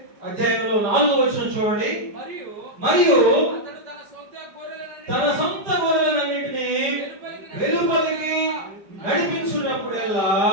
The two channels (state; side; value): late; left; 5.0 ms